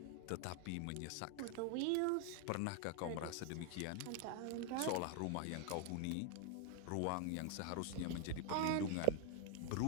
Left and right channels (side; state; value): both; different; correlation 0.00